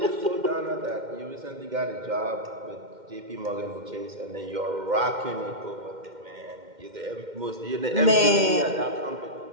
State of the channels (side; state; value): left; late; 2.1 ms